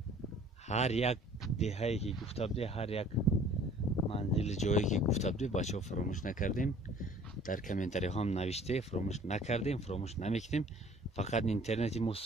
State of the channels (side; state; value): both; normal; correlation 0.52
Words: هر یک دهایی که گفته بوده، هر یک منزل جایی که گفته بوده بچه ها فراموش نکردیم. در کامنتری هم نوشته فراموش نکردیم، فراموش نمیکنیم. فقط اینترنتی ما